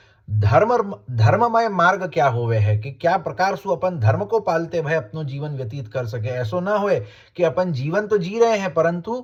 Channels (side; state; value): both; identical; correlation 1.00